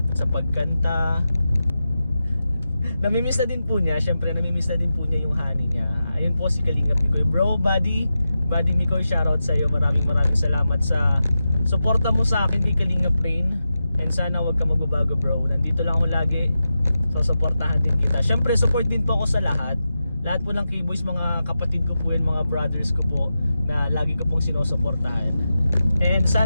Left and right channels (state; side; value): inverted; both; correlation -0.91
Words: sa pagkanta. Namimiss na din po niya, syempre namimiss na din po niya yung honey niya. Ayun po si Kalingap Mikoy. Bro, buddy Mikoy, shoutout sa iyo. Maraming salamat sa suporta mo sa akin kay Kalingap Rain. And sana wag ka magbabago bro. Nandito lang ako lagi. So suportahan din kita. Syempre support din po ako sa lahat. Lahat po ng K-Boys, mga kapatid ko po yun, mga brothers ko po na lagi ko pong sinusuportahan. And